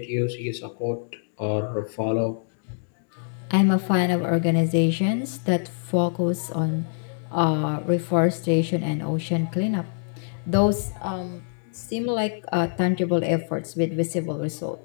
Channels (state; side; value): silent; right; digital silence